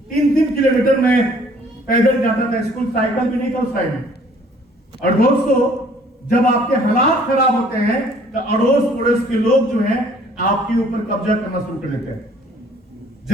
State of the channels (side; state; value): both; normal; correlation 0.57